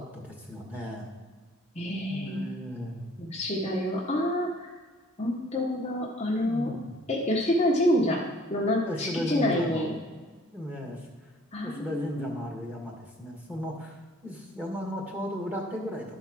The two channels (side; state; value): both; normal; correlation 0.56